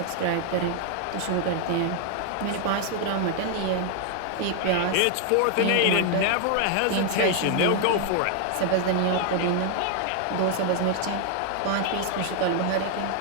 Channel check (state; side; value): different; both; correlation 0.00